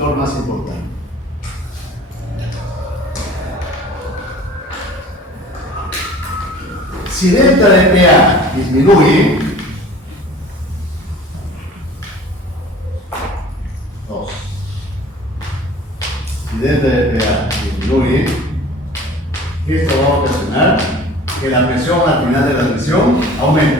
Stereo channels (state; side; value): normal; both; correlation 0.45